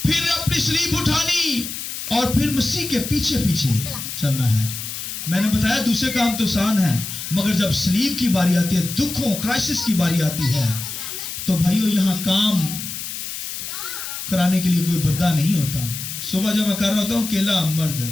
फिर अपनी स्लीब उठानी और फिर मसीह के पीछे पीछे चलना है। मैंने बताया दूसरे काम तो आसान है, मगर जब स्लीब की बारी आती है, दुखों क्राइसिस की बारी आती है, तो भाइयों यहां काम कराने के लिए कोई बंदा नहीं होता। सुबह जब मैं कर रहा होता हूं अकेला मर्द,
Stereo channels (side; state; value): left; noise; hiss, 7 dB below the sound